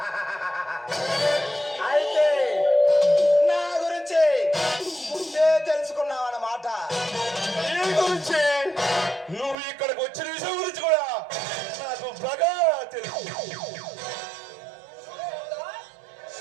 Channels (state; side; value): drops out; left; at 9.6 s